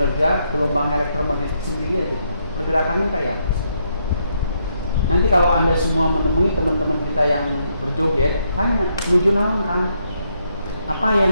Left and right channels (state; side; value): inverted; both; correlation -0.76